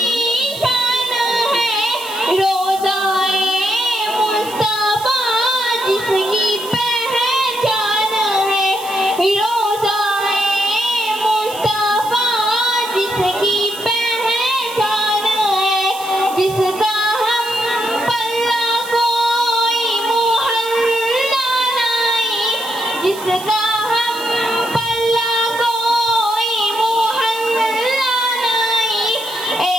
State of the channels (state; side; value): noise; right; hiss, 15 dB below the sound